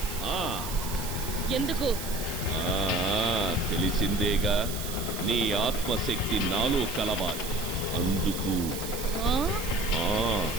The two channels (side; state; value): right; noise; hiss, 8 dB below the sound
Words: ఎందుకు? తెలిసిందేగా, నీ ఆత్మశక్తి నాలో కలవాలి. అందుకు